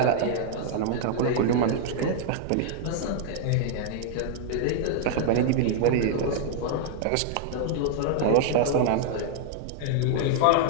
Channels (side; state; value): both; different; correlation -0.01